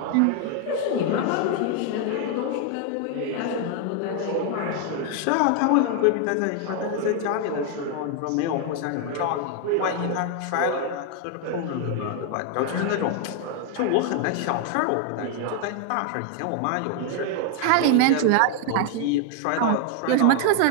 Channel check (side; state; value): both; different; correlation 0.00